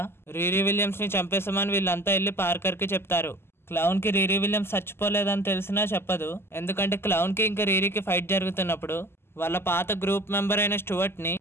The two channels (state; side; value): late; right; 0.12 ms